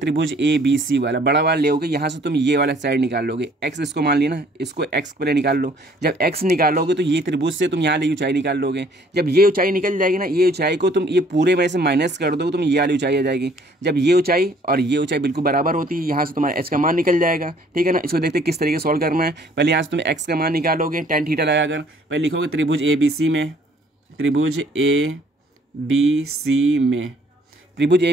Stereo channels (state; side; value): normal; both; correlation 0.59